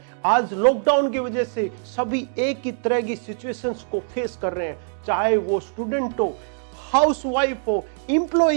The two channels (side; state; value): left; silent; digital silence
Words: आज लॉकडाउन की वजह से सभी एक ही तरह की सिचुएशंस को फेस कर रहे हैं, चाहे वो स्टूडेंट हो, हाउसवाइफ हो,